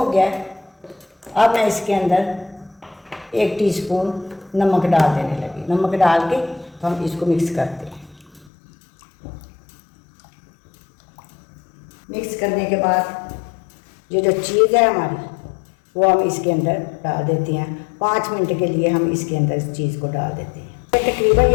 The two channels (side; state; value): right; drops out; at 8.5 s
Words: गया। अब मैं इसके अंदर 1 टीस्पून नमक डाल देने लगी। नमक डाल के हम इसको मिक्स करते हैं। मिक्स करने के बाद ये जो चीज़ है हमारी वो हम इसके अंदर डाल देते हैं। 5 मिनट के लिए हम इसके अंदर इस चीज़ को डाल देते हैं। तकरीबन